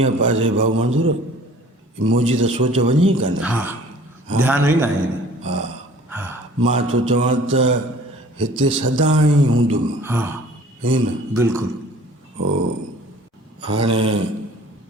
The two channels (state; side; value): normal; both; correlation 0.50